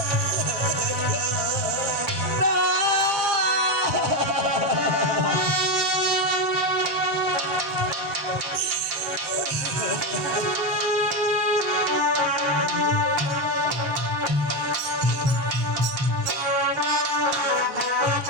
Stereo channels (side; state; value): left; late; 7.5 ms